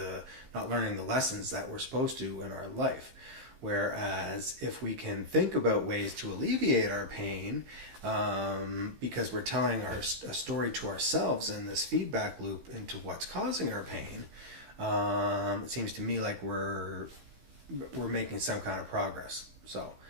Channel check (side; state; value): left; late; 15 ms